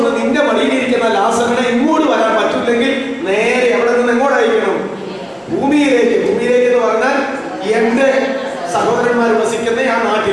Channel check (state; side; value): identical; both; correlation 1.00